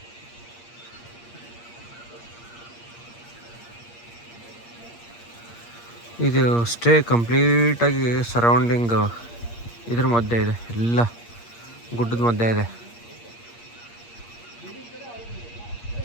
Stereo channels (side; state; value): right; late; 8.5 ms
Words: ಇದು ಸ್ಟೇ ಕಂಪ್ಲೀಟಾಗಿ ಸರೌಂಡಿಂಗ್ ಇದ್ರ ಮಧ್ಯೆ ಇದೆ, ಎಲ್ಲ ಗುಡ್ಡದ ಮಧ್ಯೆ ಇದೆ.